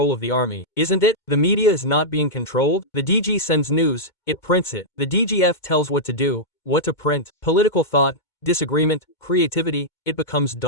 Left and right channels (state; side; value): late; right; 2.2 ms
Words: of the army, isn't it? The media is not being controlled. The DG sends news, it prints it. The DGF tells what to do, what to print. Political thought, disagreement, creativity, it becomes